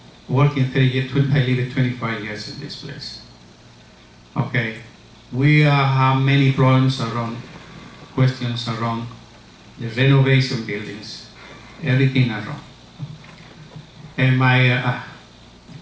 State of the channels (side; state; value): both; identical; correlation 1.00